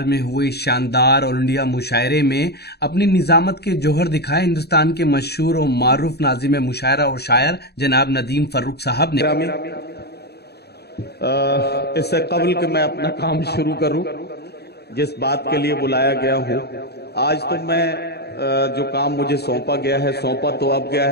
में हुए शानदार ऑल इंडिया मुशायरे में अपनी निजामत के जौहर दिखाए हिंदुस्तान के मशहूर और मारूफ नाज़िम मुशायरा और शायर जनाब नदीम फर्रुख साहब ने। इससे कबल कि मैं अपना काम शुरू करूं, जिस बात के लिए बुलाया गया हूं, आज तो मैं जो काम मुझे सौंपा गया है, सौंपा तो अब गया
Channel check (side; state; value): right; late; 0.47 ms